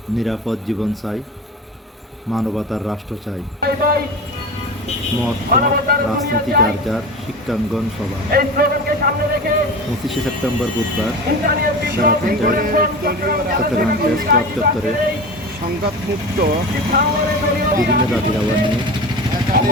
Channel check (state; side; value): normal; both; correlation 0.30